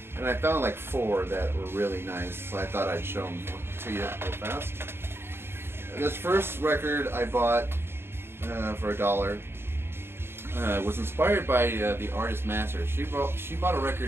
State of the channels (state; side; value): late; left; 0.11 ms